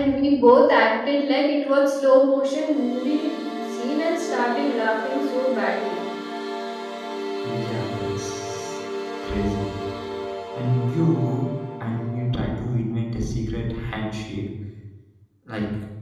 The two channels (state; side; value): identical; both; correlation 1.00